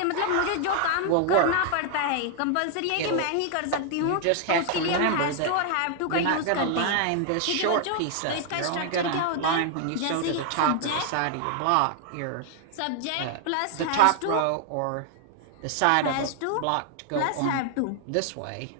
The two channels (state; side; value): different; both; correlation 0.00